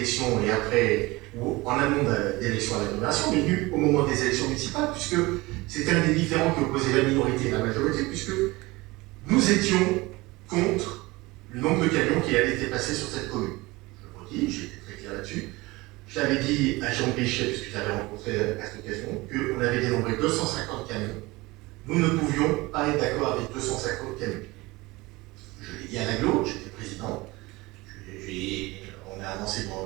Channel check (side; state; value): left; quieter; 21.8 dB